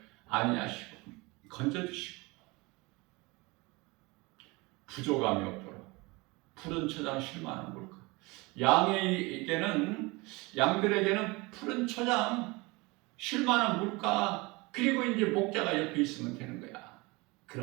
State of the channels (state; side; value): quieter; left; 24.6 dB